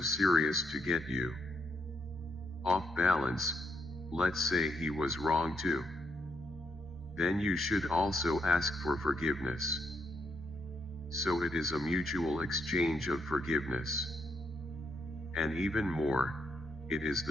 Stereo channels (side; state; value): both; normal; correlation 0.77